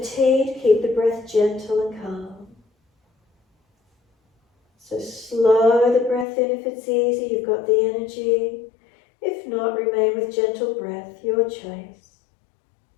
keep the breath gentle and calm. So slow the breath in if it's easy, you've got the energy. If not, remain with gentle breath, your choice.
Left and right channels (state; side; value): drops out; right; at 6.2 s